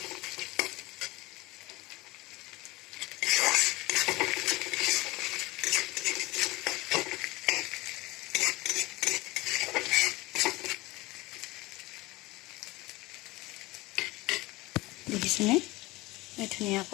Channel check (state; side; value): quieter; right; 20.7 dB